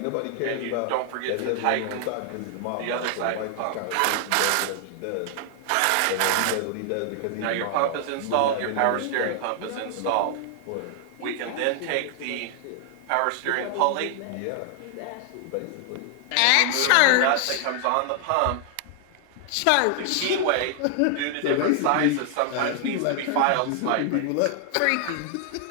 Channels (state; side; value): different; both; correlation 0.00